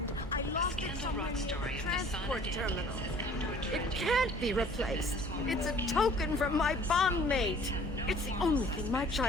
I lost it somewhere near the transport terminal. It can't be replaced. It's a token from my bondmate. It's the only thing my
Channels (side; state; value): both; normal; correlation 0.52